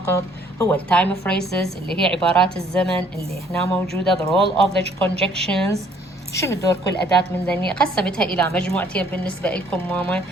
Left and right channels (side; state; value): both; normal; correlation 0.61